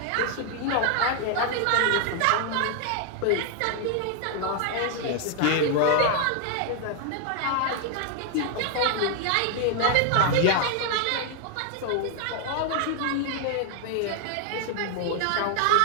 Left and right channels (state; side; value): different; both; correlation 0.00